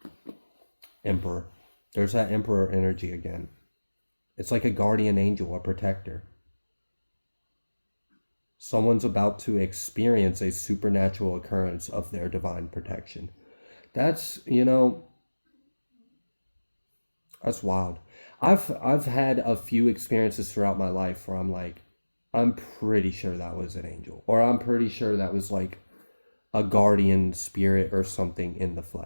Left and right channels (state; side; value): inverted; both; correlation -1.00